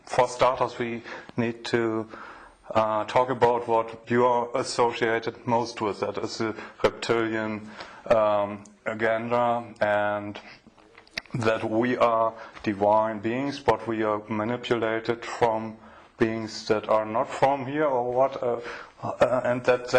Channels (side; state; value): both; identical; correlation 1.00